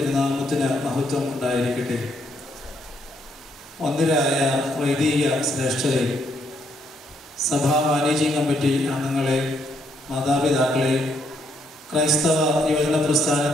മഹത്വം ഉണ്ടായിരിക്കട്ടെ. ഒന്നിരായ വൈദിക ശ്രേഷ്ഠരെ, സഭാ മാനേജിംഗ് കമ്മിറ്റി അംഗങ്ങളെ, മാതാപിതാക്കളെ, ക്രൈസ്തവ യുവജന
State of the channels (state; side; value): normal; both; correlation 0.74